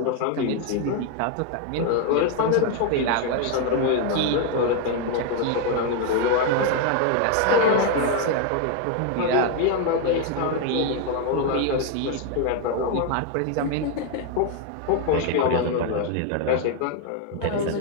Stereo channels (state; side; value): different; both; correlation 0.01